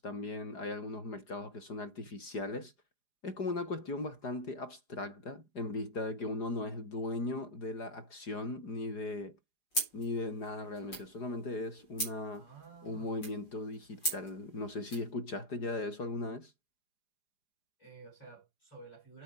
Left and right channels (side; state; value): right; late; 4.9 ms